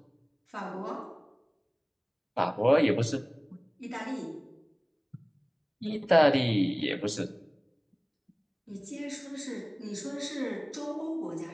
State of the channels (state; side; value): identical; both; correlation 1.00